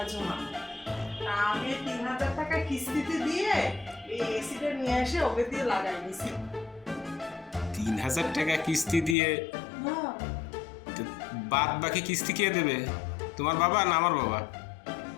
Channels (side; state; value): right; drops out; at 9.2 s